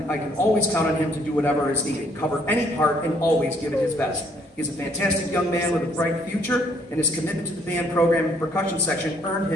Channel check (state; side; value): normal; both; correlation 0.65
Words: always count on him to do whatever is needed, cover any part, and always give it his best. He's a fantastic young man with a bright future, and his commitment to the band program and percussion section earned